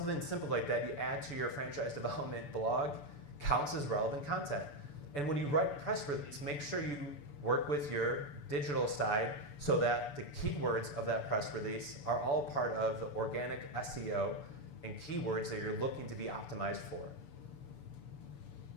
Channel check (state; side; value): late; right; 6.9 ms